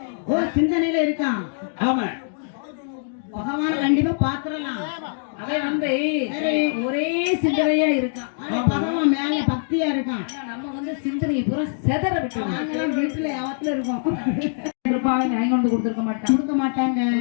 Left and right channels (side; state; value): right; silent; digital silence